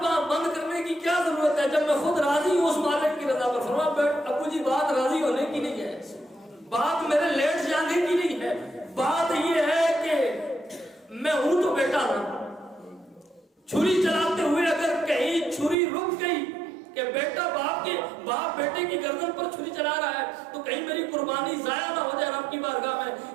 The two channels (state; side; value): drops out; left; at 15.8 s